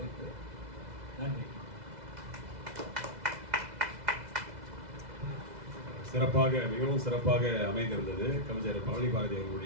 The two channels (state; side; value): late; left; 2.0 ms